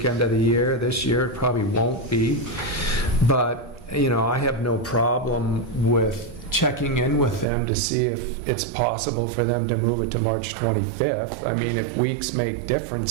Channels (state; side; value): drops out; left; at 7.5 s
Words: of the year. This year it probably won't be, but you know, I have no problem with checking in with them to see if it's possible for them to move it to March 25th. I mean, if weeks make